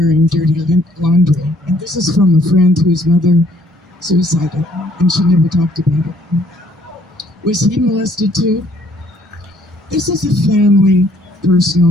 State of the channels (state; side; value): normal; both; correlation 0.63